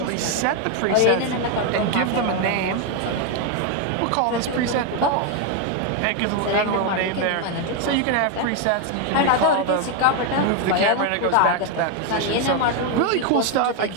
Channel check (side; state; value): both; different; correlation 0.01